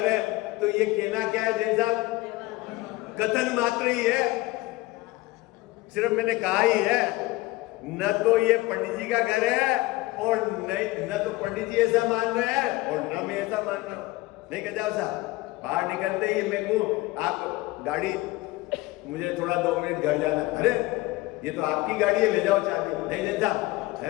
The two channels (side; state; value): right; quieter; 20.1 dB